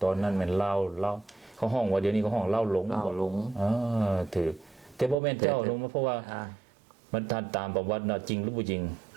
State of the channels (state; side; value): drops out; left; at 5.2 s